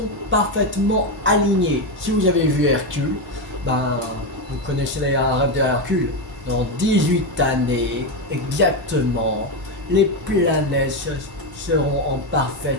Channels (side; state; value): both; normal; correlation 0.10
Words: parfaitement alignées. Si vous avez vu Hercule, ben, vous connaissez les rêves de Hercule. Dans 18 années, exactement, les planètes seront en